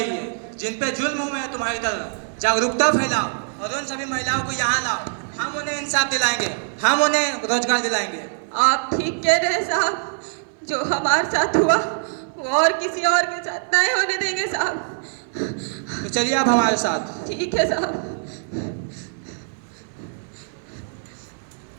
है, जिन पे जुल्म हुए हैं तुम्हारी तरह। जागरूकता फैलाओ और उन सभी महिलाओं को यहाँ लाओ। हम उन्हें इंसाफ दिलाएंगे, हम उन्हें रोजगार दिलाएंगे। आप ठीक कह रहे हैं साहब, जो हमारे साथ हुआ वो और किसी और के साथ नहीं होने देंगे साहब। तो चलिए आप हमारे साथ। ठीक है साहब।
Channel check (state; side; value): silent; left; 59 dB below the other